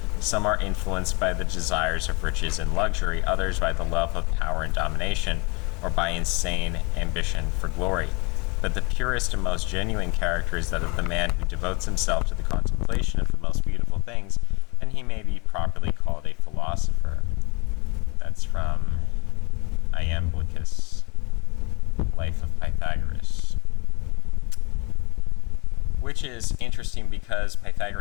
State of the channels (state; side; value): quieter; right; 28.6 dB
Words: Some are influenced by the desires of riches and luxury, others by the love of power and domination, or by insane ambition for glory. But the purest and most genuine character is that of the man who devotes himself to the contemplation of the most beautiful things, and he may be properly called a philosopher. That's from Iamblichus' Life of Pythagoras. Which is interesting because